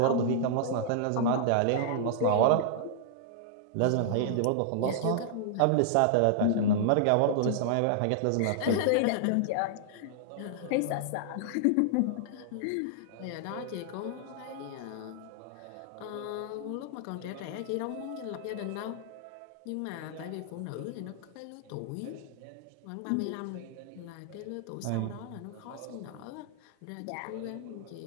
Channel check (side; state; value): both; different; correlation -0.01